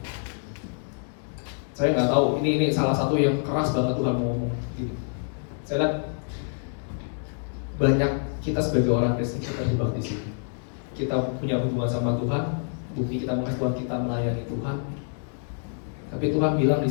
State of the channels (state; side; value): silent; right; 60 dB below the other